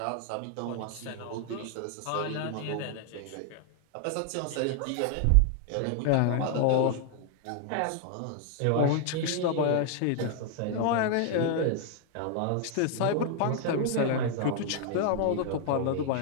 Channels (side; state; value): both; different; correlation 0.00